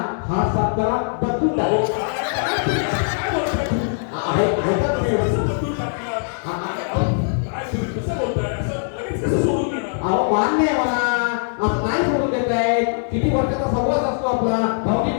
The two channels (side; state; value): right; silent; digital silence